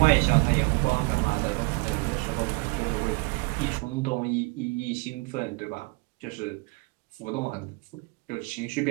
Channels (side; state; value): left; quieter; 27.8 dB